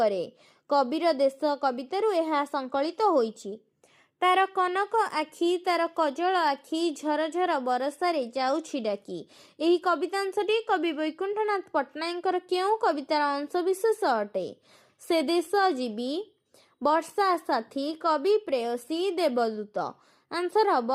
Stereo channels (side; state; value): both; identical; correlation 1.00